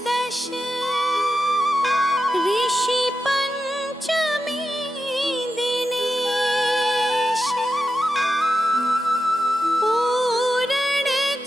दश, ऋषि पंचमी दिनेश। पूरण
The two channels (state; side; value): normal; both; correlation 0.89